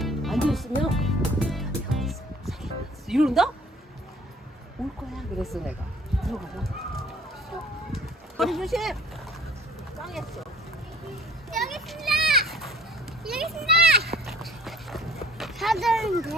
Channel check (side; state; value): both; normal; correlation 0.54